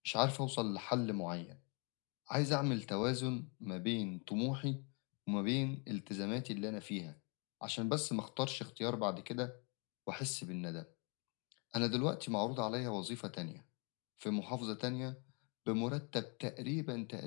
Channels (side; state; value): right; quieter; 34.6 dB